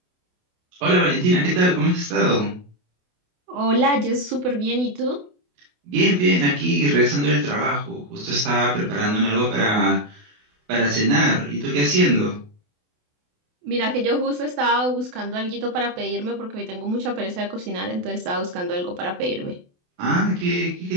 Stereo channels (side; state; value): left; late; 28 ms